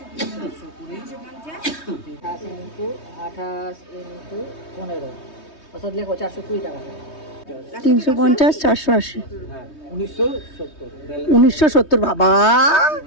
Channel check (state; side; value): late; right; 3.2 ms